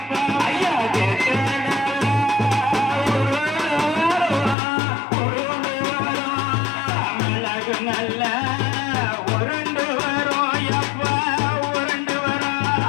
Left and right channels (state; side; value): drops out; right; at 4.5 s